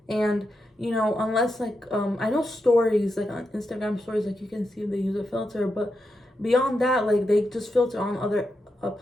And you know, unless like I know stories, like on Instagram stories, like you can see they use a filter, but beyond that, like they just filter on other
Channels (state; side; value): normal; both; correlation 0.86